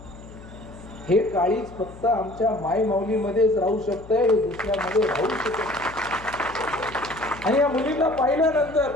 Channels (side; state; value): left; noise; hum, 18 dB below the sound